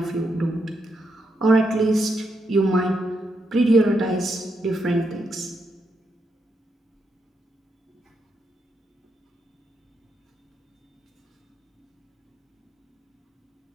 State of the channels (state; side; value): normal; both; correlation 0.81